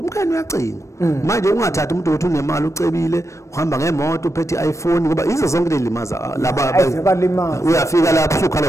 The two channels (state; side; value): late; right; 0.15 ms